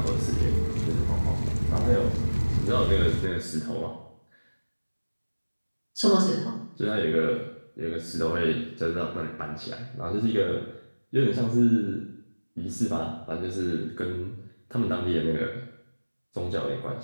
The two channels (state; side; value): inverted; both; correlation -1.00